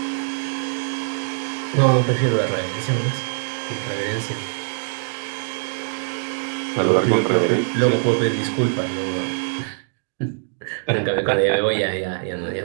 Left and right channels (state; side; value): silent; left; digital silence